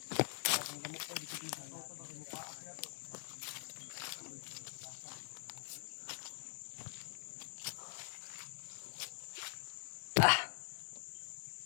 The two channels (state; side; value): silent; right; digital silence